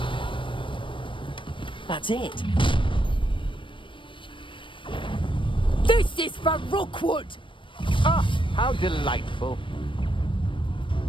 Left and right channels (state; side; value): late; right; 0.25 ms